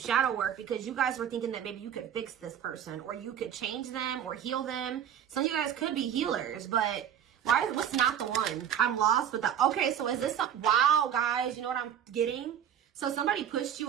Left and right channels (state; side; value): quieter; left; 9.3 dB